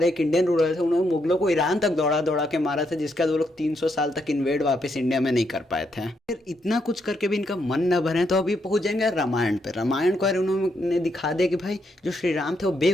एक इंडियन रूलर थे उन्होंने मुगलों को ईरान तक दौड़ा दौड़ा के मारा था, जिसका वो लोग 300 साल तक इन्वेड वापस इंडिया में नहीं कर पाए थे। फिर इतना कुछ करके भी इनका मन न भरे तो अभी पहुंच जाएंगे रामायण पे। रामायण को यार उन्होंने दिखा दिया कि भाई जो श्री राम थे वो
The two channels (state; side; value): normal; both; correlation 0.78